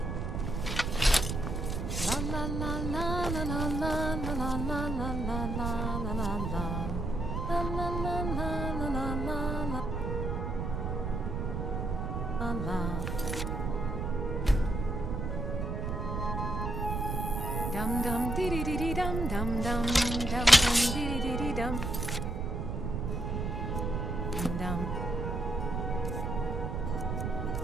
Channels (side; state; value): right; noise; rumble, 2 dB below the sound